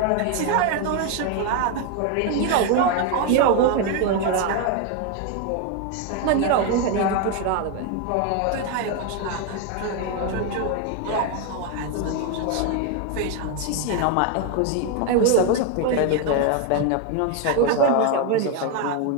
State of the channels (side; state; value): both; different; correlation 0.01